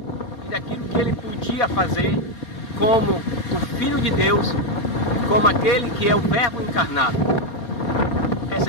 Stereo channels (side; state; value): right; late; 4.2 ms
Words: e daquilo que ele podia fazer como o Filho de Deus, como aquele que é o Verbo encarnado.